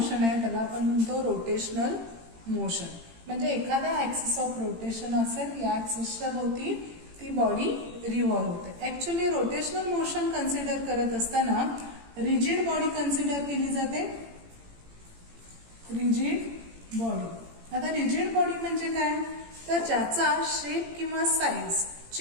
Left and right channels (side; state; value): left; late; 18 ms